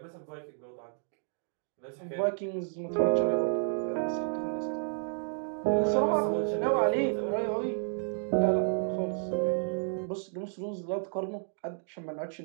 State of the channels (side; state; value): left; silent; digital silence